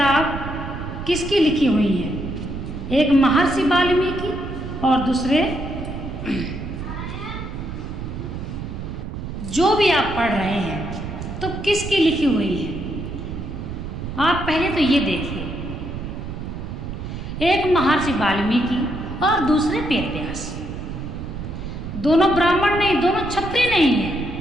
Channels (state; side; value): noise; right; rumble, 7 dB below the sound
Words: किसकी लिखी हुई है? एक महर्षि वाल्मीकि और दूसरे, जो भी आप पढ़ रहे हैं तो किसकी लिखी हुई है? आप पहले तो ये देखिए, एक महर्षि वाल्मीकि और दूसरे वेद व्यास। दोनों ब्राह्मण नहीं, दोनों क्षत्रिय नहीं है,